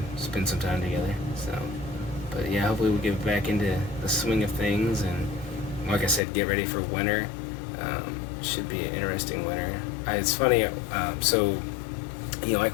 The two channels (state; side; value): drops out; right; at 6.2 s